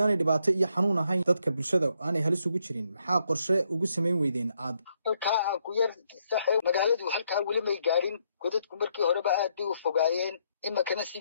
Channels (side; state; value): both; inverted; correlation -0.75